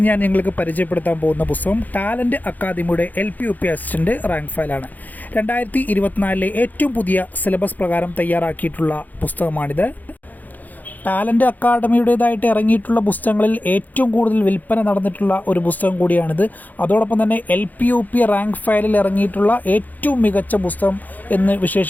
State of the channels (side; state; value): right; late; 0.082 ms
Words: ഞാൻ നിങ്ങൾക്ക് പരിചയപ്പെടുത്താൻ പോകുന്ന പുസ്തകം ടാലൻറ്റ് അക്കാദമിയുടെ LP-UP അസിസ്റ്റൻ്റ് റാങ്ക് ഫയലാണ്. 2024 ഏറ്റവും പുതിയ സിലബസ് പ്രകാരം തയ്യാറാക്കിയിട്ടുള്ള പുസ്തകമാണിത്. ടാലൻറ്റ് അക്കാദമിയുടേതായിട്ട് ഇറങ്ങിയിട്ടുള്ള പുസ്തകങ്ങളിൽ ഏറ്റവും കൂടുതൽ വിൽപ്പന നടന്നിട്ടുള്ള ഒരു പുസ്തകം കൂടിയാണിത്. അതോടൊപ്പം തന്നെ LP-UP റാങ്ക് ഫയലിൽ ഇറങ്ങിയിട്ടുള്ള ഏറ്റവും മികച്ച പുസ്തകം എന്ന്